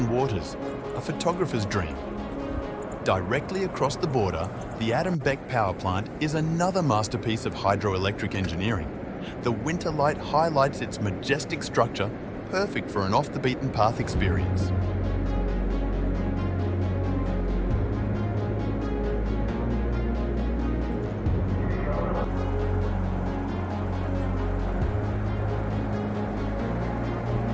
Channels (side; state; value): both; identical; correlation 1.00